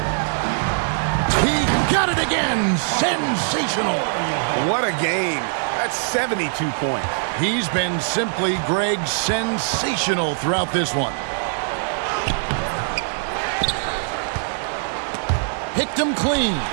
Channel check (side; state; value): left; silent; digital silence